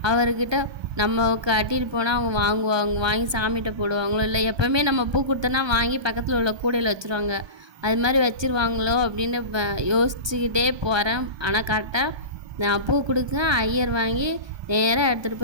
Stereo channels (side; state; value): left; late; 1.2 ms